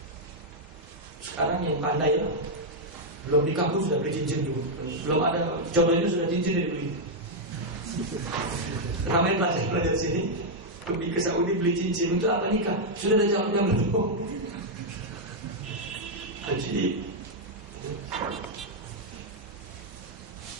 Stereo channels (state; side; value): normal; both; correlation -0.02